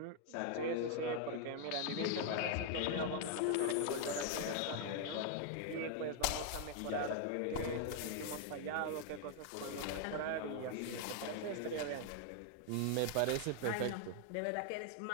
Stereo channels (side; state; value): both; different; correlation 0.00